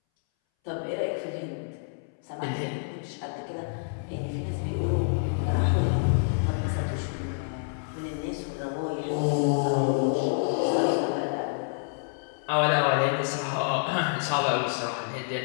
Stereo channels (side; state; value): right; silent; 59 dB below the other